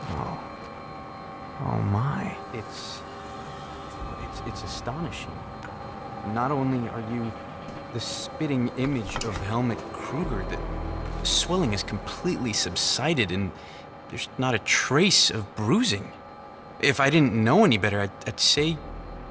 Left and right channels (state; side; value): identical; both; correlation 1.00